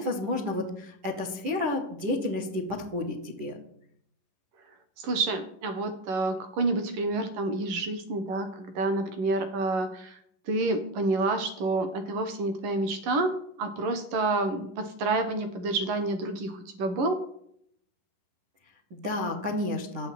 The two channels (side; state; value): left; late; 10 ms